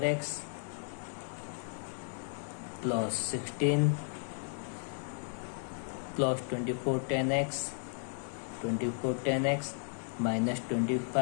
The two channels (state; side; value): silent; right; 55 dB below the other